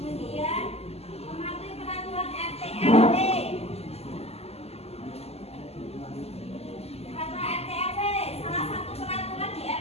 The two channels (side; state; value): right; late; 0.29 ms